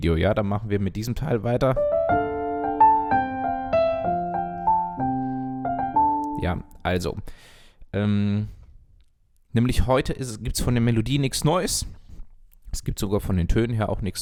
ja, dann machen wir mit diesem Teil weiter. Ja, also, nämlich heute gibt es von der Melodie nichts Neues, es gibt sogar von den Tönen her auch nichts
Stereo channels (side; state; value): both; identical; correlation 1.00